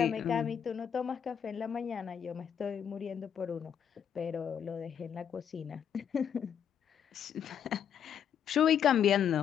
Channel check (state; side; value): quieter; right; 8.4 dB